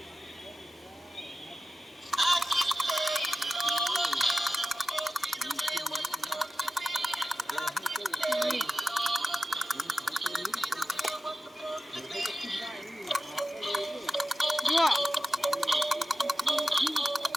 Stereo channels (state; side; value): normal; both; correlation 0.93